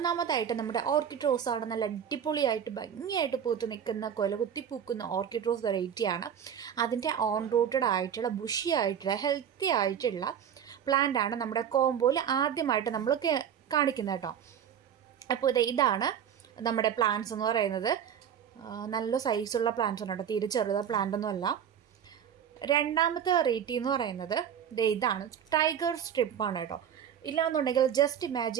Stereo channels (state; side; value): quieter; left; 8.7 dB